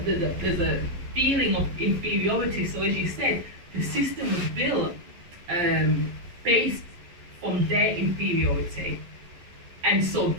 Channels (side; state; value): left; late; 11 ms